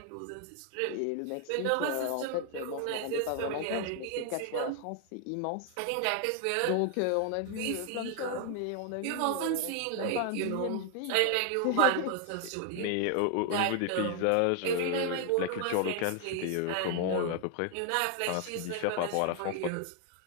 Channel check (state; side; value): different; both; correlation 0.00